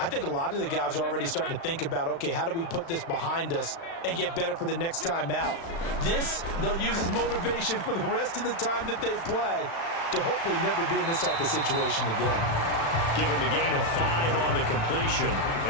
think a lot of the guys are already starting to think about, okay, how do we put this behind us and get better for the next time out? This, they'll use as motivation for the rest of the time that they play to hopefully never be in this type of situation again. Give him a gain of 5 on the completion,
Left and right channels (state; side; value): late; right; 36 ms